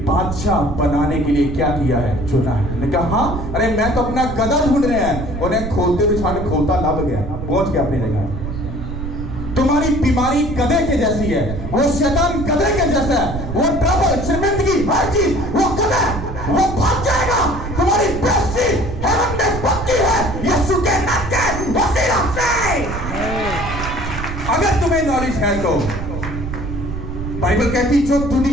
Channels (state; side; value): noise; right; rumble, 7 dB below the sound